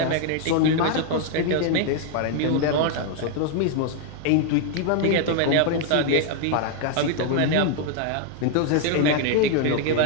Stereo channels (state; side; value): different; both; correlation 0.00